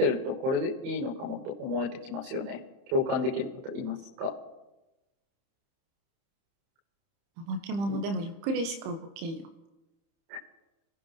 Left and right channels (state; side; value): late; left; 30 ms